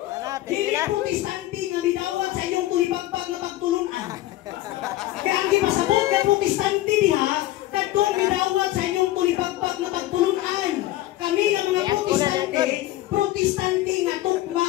Dili protestante nga midawat sa inyong tulipagpag na pagtulunan. Kaya ang gipasabot nga protestante diha, kadtong midawat sa inyong tulipagpag na pagtulunan. Kami nga mga protestante nga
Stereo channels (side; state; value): right; quieter; 15.9 dB